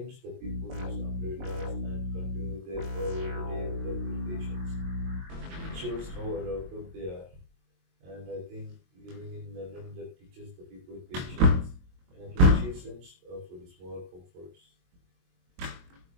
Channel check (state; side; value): late; left; 22 ms